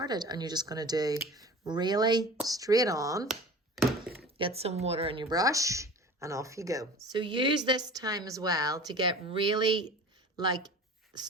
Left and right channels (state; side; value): normal; both; correlation 0.40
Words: and you're just going to do really straight on, get some water in your brush and off you go. So use this time as well to get really